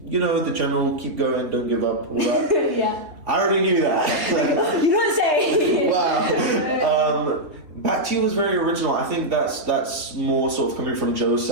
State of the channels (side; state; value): left; late; 3.3 ms